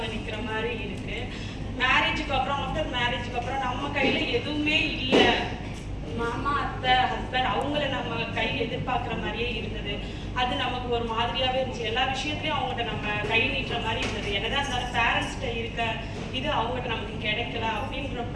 நிற்கிற மாதிரி இருக்குது. மேரேஜுக்கு அப்புறம், ஆஃப்டர் மேரேஜுக்கு அப்புறம் நம்ம கையில் எதுவுமே இல்லை. மாமா, அத்தை, ஹஸ்பண்ட் அவங்கள நம்ம கை எதிர்பார்க்குற மாதிரியே இருந்தது. அது நமக்கு ஒரு மாதிரியாகவே இருந்துச்சு. எல்லா விஷயத்துலையும் அவங்ககிட்ட நம்ம கை நீட்டுற மாதிரி இருந்தது. என்னதான் இருந்தாலும் பேரண்ட்ஸ்கிட்ட இருக்க இது அவங்ககிட்ட நமக்கு கிடைக்கல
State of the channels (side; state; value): both; identical; correlation 1.00